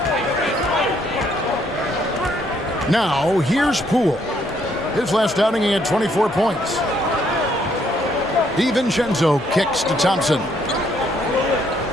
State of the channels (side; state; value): both; normal; correlation 0.69